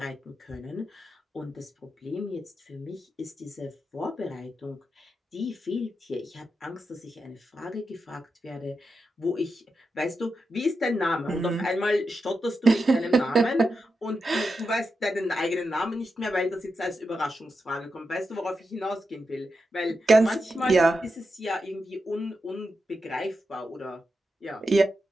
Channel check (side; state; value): both; normal; correlation 0.88